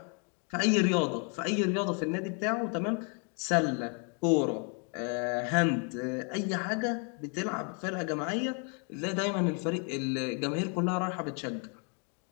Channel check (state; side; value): quieter; right; 38.6 dB